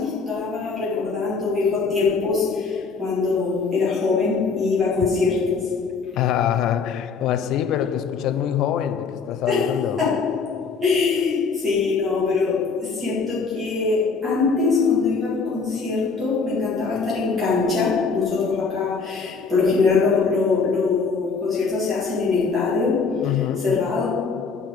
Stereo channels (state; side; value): quieter; right; 4.9 dB